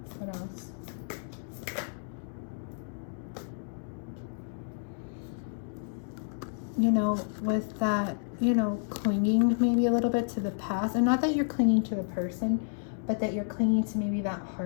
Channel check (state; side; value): silent; right; digital silence